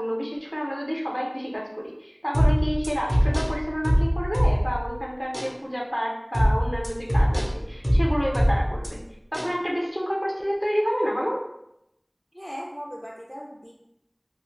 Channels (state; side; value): identical; both; correlation 1.00